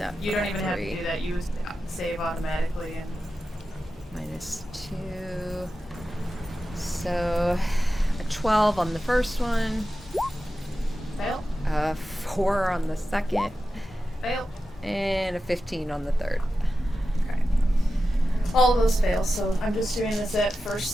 You for don't even have to 3. do that. You save automatically and Minus 2. So a 12 on the first one. fail, A 4 on the second. fail. And a 15 on the third. Okay. All of those fail, so I'm just doing this at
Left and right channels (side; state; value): both; normal; correlation 0.92